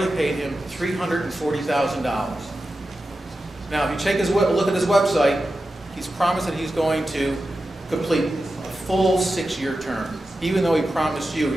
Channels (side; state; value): both; normal; correlation 0.92